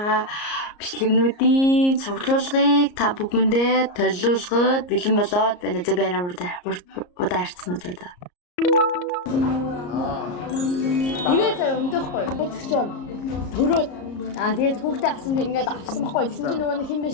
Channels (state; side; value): late; right; 34 ms